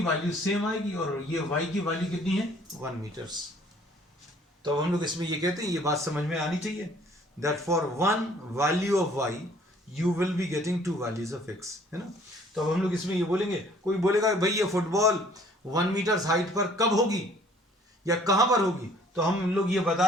वैल्यू सेम आएगी और ये y की वैल्यू कितनी है, 1 मीटर्स। तो हम लोग इसमें ये कहते हैं, ये बात समझ में आनी चाहिए, that for 1 value of y you will be getting 2 values of x, है ना। तो अब हम लोग इसमें ये बोलेंगे, कोई बोलेगा भाई ये फुटबॉल 1 मीटर हाइट पर कब होगी या कहां पर होगी, तो हम लोग ये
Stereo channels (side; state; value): both; normal; correlation 0.57